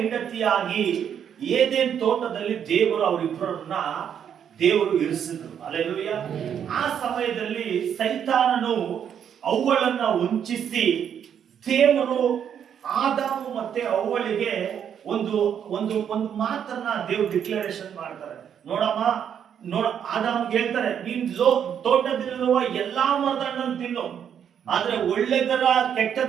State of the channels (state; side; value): quieter; left; 8.5 dB